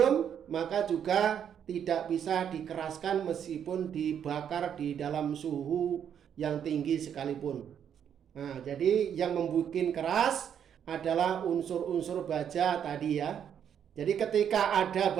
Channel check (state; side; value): quieter; left; 8.7 dB